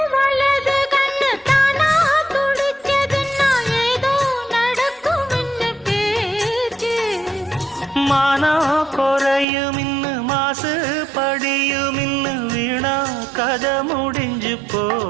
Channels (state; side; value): drops out; left; at 9.5 s